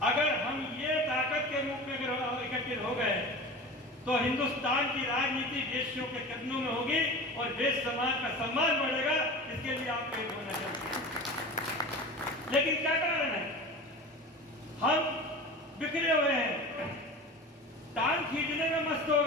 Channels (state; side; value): normal; both; correlation 0.33